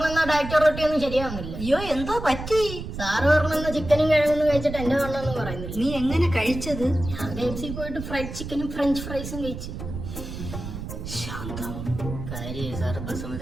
ഡയറ്റ് റൊട്ടി ഒന്നും ശരിയാവുന്നില്ല. അയ്യോ എന്തോ പറ്റി? സാറ് പറഞ്ഞ ചിക്കനും കിഴങ്ങൊന്നും കഴിച്ചിട്ട് എന്റെ വണ്ണൊന്നും പറയുന്നില്ല. നീ എങ്ങനെ കഴിച്ചത്? ഞാൻ KFC പോയിട്ട് ഫ്രൈഡ് ചിക്കനും ഫ്രഞ്ച് ഫ്രൈസും കഴിച്ചു. ശാന്തം കാര്യം സാറ്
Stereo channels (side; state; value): right; noise; rumble, 8 dB below the sound